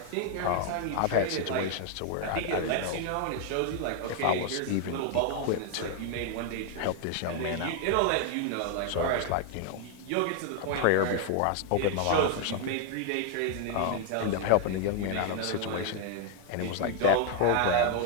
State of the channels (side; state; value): both; different; correlation 0.00